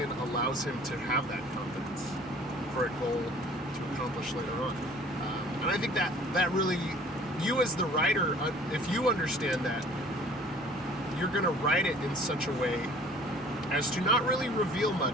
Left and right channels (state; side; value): normal; both; correlation 0.51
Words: allows him to have that confidence for a goal to accomplish later on. And I think that really, you as the writer, if you understand that, you're going to write it in such a way as to not really reveal